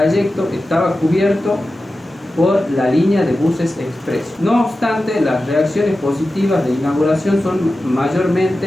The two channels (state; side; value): normal; both; correlation 0.93